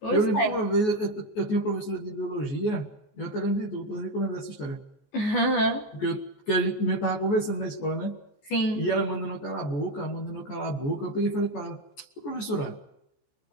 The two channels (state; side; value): late; right; 14 ms